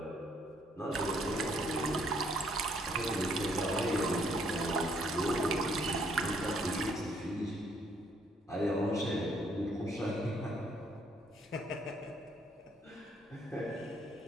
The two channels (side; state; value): both; normal; correlation 0.68